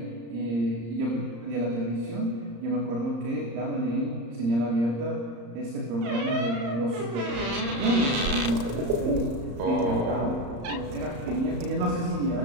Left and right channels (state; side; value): late; left; 34 ms